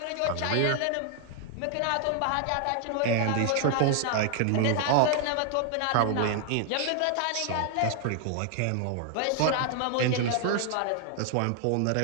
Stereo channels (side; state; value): both; different; correlation 0.00